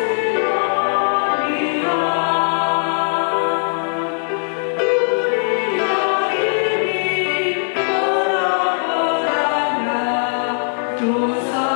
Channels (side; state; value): right; silent; 66 dB below the other